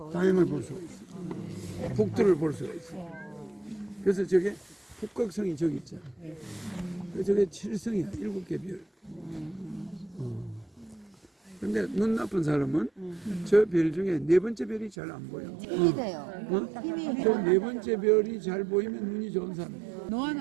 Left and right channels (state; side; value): drops out; left; at 15.0 s